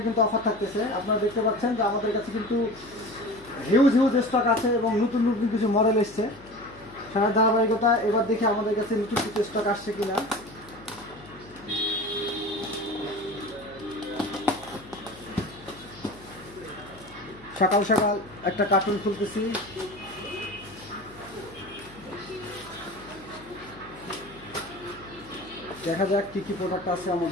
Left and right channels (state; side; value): noise; left; hum, 21 dB below the sound